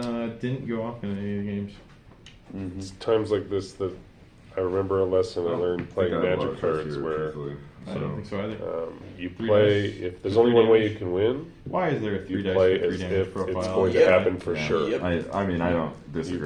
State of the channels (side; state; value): both; identical; correlation 1.00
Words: didn't go off in any of the games. It's times like this that I remember a lesson I learned playing I think I have a lot Magic of trust cards here, where truthfully. I don't think so either. you 3 play, dice, if there's 3 only one way damage. you can win, Why is there a 3 you dice play for 3 as damage if profile? it's going to Yeah. happen for Yeah. sure. I mean, I don't You